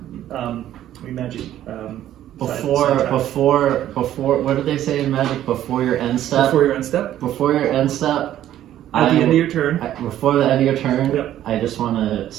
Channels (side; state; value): left; quieter; 12.2 dB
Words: Before, what did they say in Magic? Before your end step? Before your end step? Before your end step. At the end of your turn. Before the end of your turn, Yep. I just want to